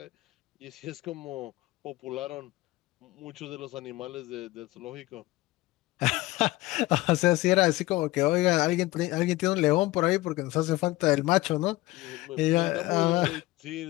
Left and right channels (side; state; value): right; quieter; 18.8 dB